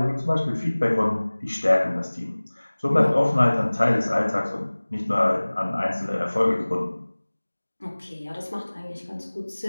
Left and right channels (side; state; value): both; inverted; correlation -1.00